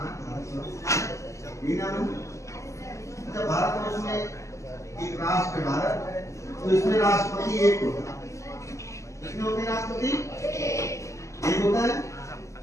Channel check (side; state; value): right; late; 0.15 ms